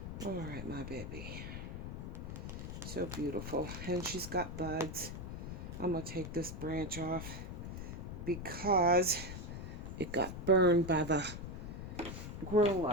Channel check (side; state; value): left; noise; rumble, 7 dB below the sound